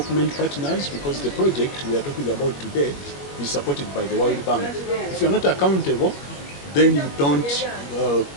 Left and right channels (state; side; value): late; right; 21 ms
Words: partners, because the project we are talking about today is supported by the World Bank. If you're not accountable, then you don't